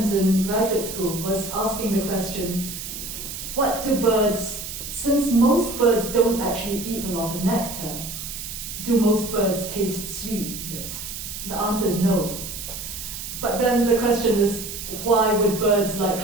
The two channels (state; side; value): noise; right; hiss, 8 dB below the sound